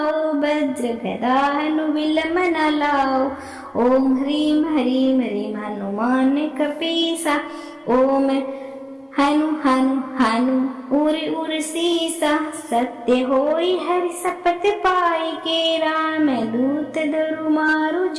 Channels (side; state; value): both; identical; correlation 1.00